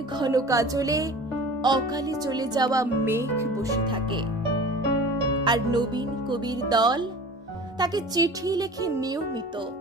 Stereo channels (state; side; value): normal; both; correlation 0.40